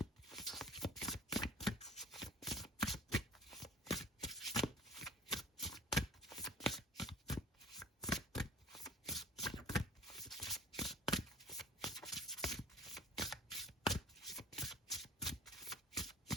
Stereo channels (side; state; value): both; normal; correlation 0.44